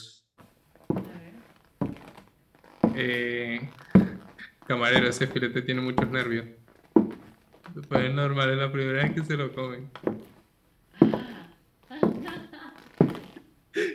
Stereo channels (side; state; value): both; identical; correlation 1.00